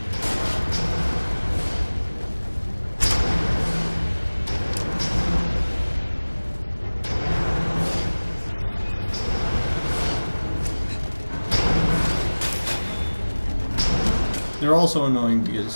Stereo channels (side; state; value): both; inverted; correlation -1.00